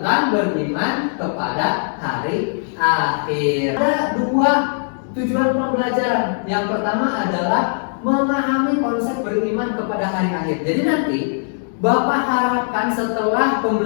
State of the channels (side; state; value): right; silent; digital silence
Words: beriman kepada hari akhir. Ada 2 tujuan pembelajaran. Yang pertama adalah memahami konsep beriman kepada hari akhir. Jadi nanti Bapak harapkan setelah